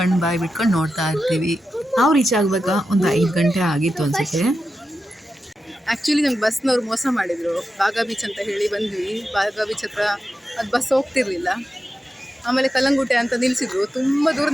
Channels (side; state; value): both; normal; correlation 0.90